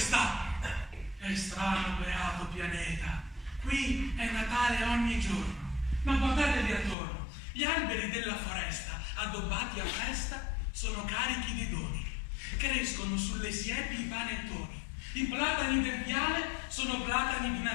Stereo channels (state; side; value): drops out; right; at 7.0 s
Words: È strano, beato pianeta, qui è Natale ogni giorno, ma guardatevi attorno, gli alberi della foresta, addobbati a festa, sono carichi di doni, crescono sulle siepi i panettoni, i platani del viale sono platani di